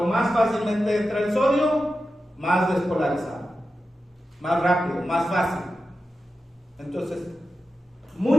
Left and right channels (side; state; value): both; normal; correlation 0.92